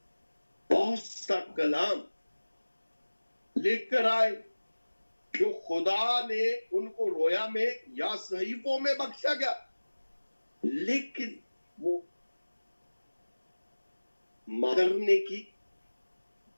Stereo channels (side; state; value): both; inverted; correlation -1.00